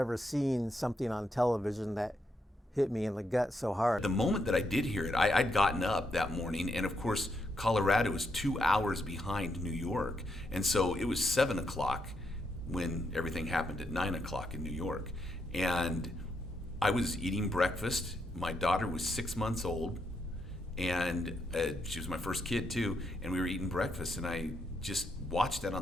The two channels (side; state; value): both; normal; correlation 0.79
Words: seen something on television that hit me in the gut so hard. The moment that I did hear it, I'd gotten up that morning, and of course, Colorado is 2 hours behind New York. And so it was 7 o'clock when everything happened at 9 o'clock in New York. And I was eating breakfast. My daughter was 6 months old, and she was my first kid too, and we were eating breakfast, and I just watched that